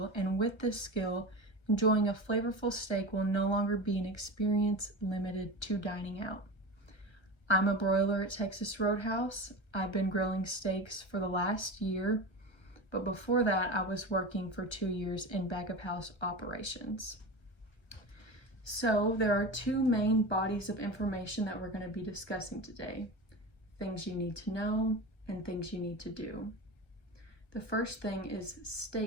and with this skill, enjoying a flavorful steak will no longer be an experience limited to dining out. I'm a broiler at Texas Roadhouse. I've been grilling steaks for the last year, but before that, I was working for 2 years in back of house operations. So there are two main bodies of information that we're going to be discussing today. Things you need to know and things you need to do. The first thing is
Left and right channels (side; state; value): right; late; 1.3 ms